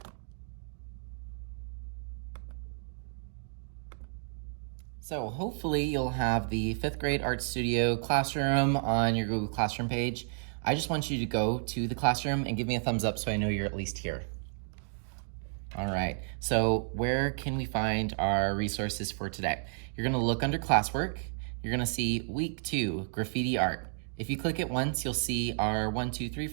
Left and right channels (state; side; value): silent; left; digital silence